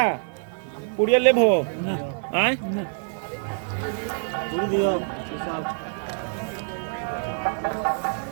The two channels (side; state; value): left; silent; digital silence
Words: पुड़िया ले भो आए